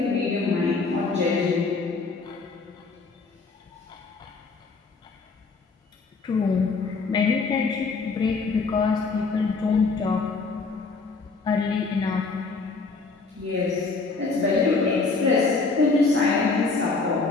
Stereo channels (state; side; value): quieter; right; 4.2 dB